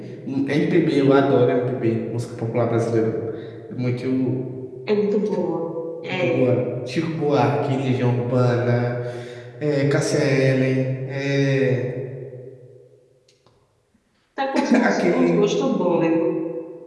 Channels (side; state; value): both; identical; correlation 1.00